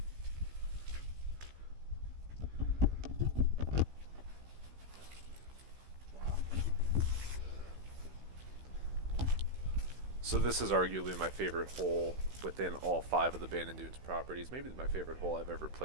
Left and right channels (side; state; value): left; late; 15 ms